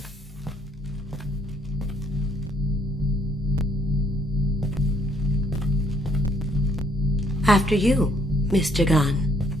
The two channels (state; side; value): normal; both; correlation 0.66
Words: After you, Mr. Gunn.